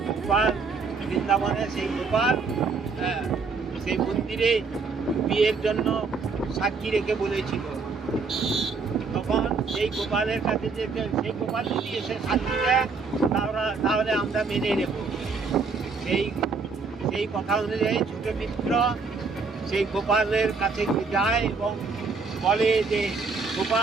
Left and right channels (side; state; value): left; quieter; 4.6 dB